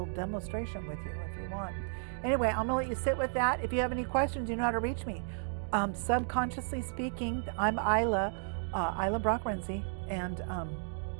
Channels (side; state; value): left; silent; digital silence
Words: demonstration with you if you want. Anyway, I'm going to let you sit with that. If you have any questions, you know how to reach me. Subconsciously speaking, I'm Ilah Brock Renzi, and